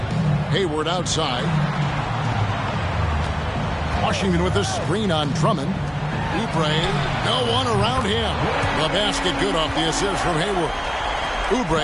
Hayward outside. Washington with the screen on Drummond. Oubre, no one around him. The basket good off the assist from Hayward.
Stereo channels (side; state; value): both; identical; correlation 1.00